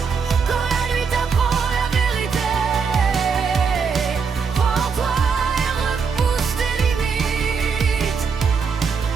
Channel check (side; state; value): left; quieter; 5.7 dB